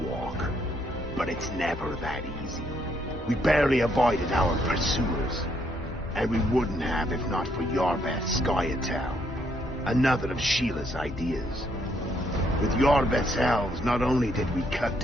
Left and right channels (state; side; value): normal; both; correlation 0.72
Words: but it's never that easy. We barely avoided our pursuers, and we wouldn't have if not for Iorveth Skoyatel, another of Sheila's ideas. With Iorveth's elves, not only did we cut